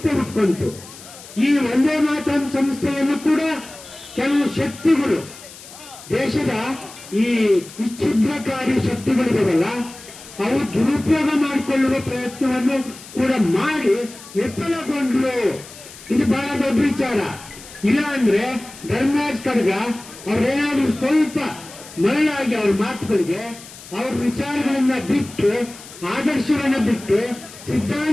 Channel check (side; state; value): left; noise; hiss, 17 dB below the sound